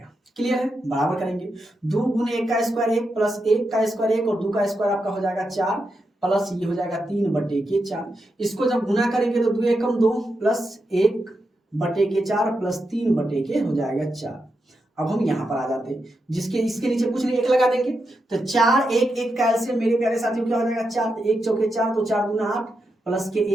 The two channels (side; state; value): both; normal; correlation 0.86